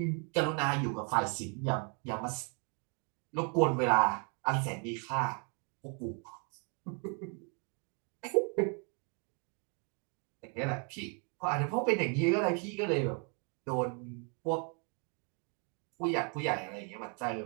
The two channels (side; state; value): left; quieter; 37.6 dB